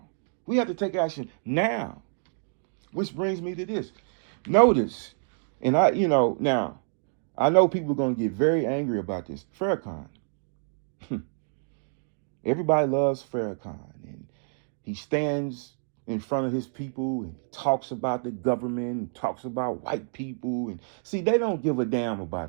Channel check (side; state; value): left; silent; digital silence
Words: We have to take action now. Which brings me to this. Notice, and now, I know people are going to get very angry about this. Farrakhan. Everybody loves Farrakhan. And he stands in front of his people and talks about the government and talks about white people. And see, they don't give a damn